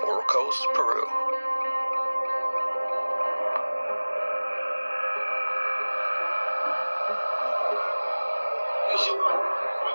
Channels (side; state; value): both; inverted; correlation -1.00